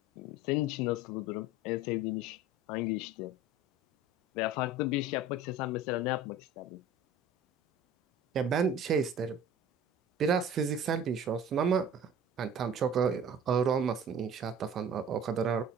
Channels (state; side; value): normal; both; correlation 0.42